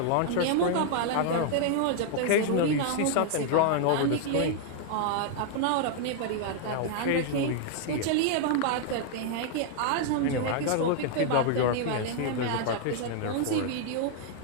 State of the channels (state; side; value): different; both; correlation 0.00